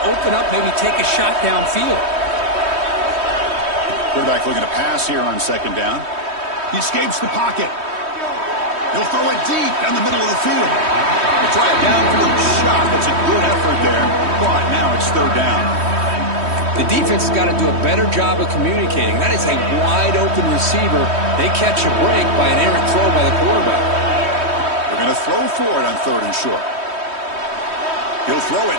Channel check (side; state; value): left; late; 3.1 ms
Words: open up, maybe take a shot downfield. Quarterback looking to pass here on 2nd down. He escapes the pocket. He'll throw it deep down the middle of the field. He'll try a downfield shot. That's a good effort there, but now it's 3rd down. The defense has got to do a better job of communicating. That is a wide-open receiver. They catch a break by an errant throw by the quarterback. They're going to throw for it on 3rd and short. He'll throw